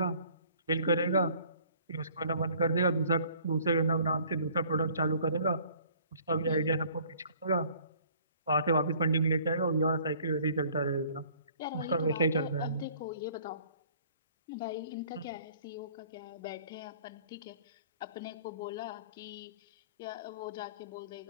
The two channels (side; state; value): both; inverted; correlation -0.55